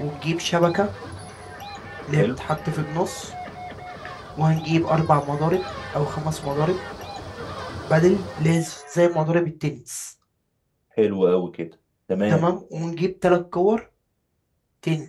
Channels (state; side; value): identical; both; correlation 1.00